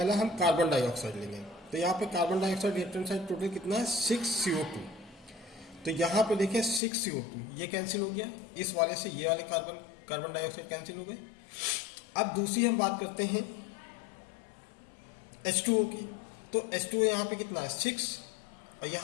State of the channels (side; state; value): right; drops out; at 6.8 s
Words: हम कार्बन डाइऑक्साइड लेंगे, तो यहाँ पे carbon dioxide reactant side total कितना है 6CO2। तो यहाँ पे देखिए 6CO2 ये कैंसिल हो गया, इस वाले से ये वाले कार्बन डाइऑक्साइड कैंसिल हो गए। अब दूसरी हम बात करते हैं H2O की। तो H2O यहाँ पे कितना है 6 और